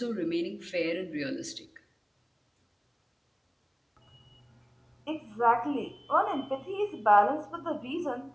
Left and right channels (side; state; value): both; identical; correlation 1.00